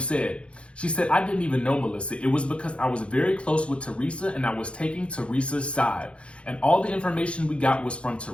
She said, I didn't even know Melissa. It was because I was very close with Teresa and I was taking Teresa's side. And all the information we got was from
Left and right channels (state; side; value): late; right; 0.059 ms